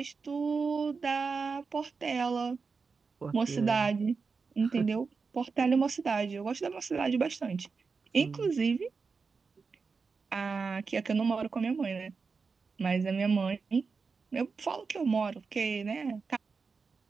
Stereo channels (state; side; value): quieter; left; 4.9 dB